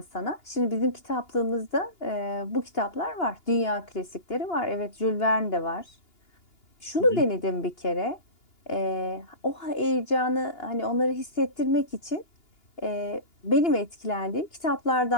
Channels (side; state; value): right; late; 2.9 ms